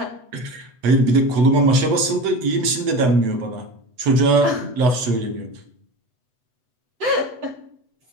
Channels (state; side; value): late; left; 8.0 ms